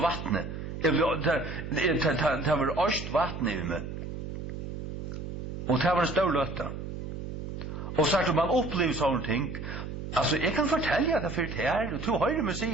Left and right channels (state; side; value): noise; right; hum, 7 dB below the sound